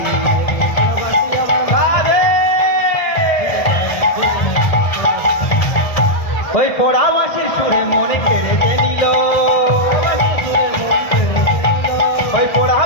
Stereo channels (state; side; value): late; right; 1.7 ms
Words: ওই পোড়া বাসির সুরে মনে কেড়ে নিল, ওই পোড়া